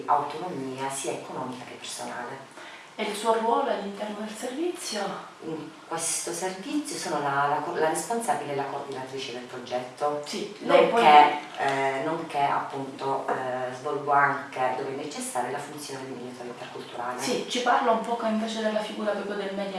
autonomia sia economica che personale. E il suo ruolo all'interno del servizio? In questo servizio sono la responsabile e la coordinatrice del progetto, Sì, lei nonché appunto svolgo anche, dove è necessaria, la funzione di mediatore interculturale. Sì, ci parla un poco invece della figura proprio del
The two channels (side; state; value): both; identical; correlation 1.00